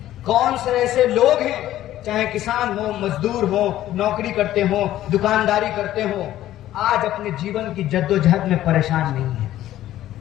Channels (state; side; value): quieter; right; 13.5 dB